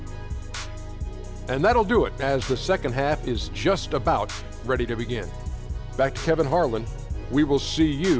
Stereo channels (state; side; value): identical; both; correlation 1.00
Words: And that'll do it, as the second half is just about ready to begin. Back to Kevin Harlan. We will see